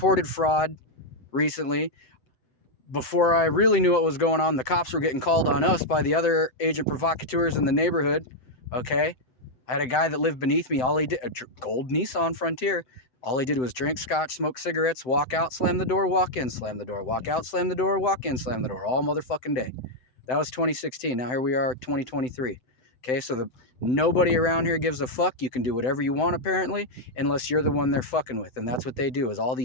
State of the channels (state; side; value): late; right; 7.8 ms